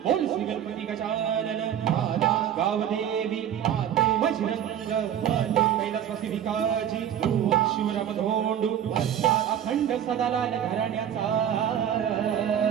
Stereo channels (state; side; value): quieter; left; 9.9 dB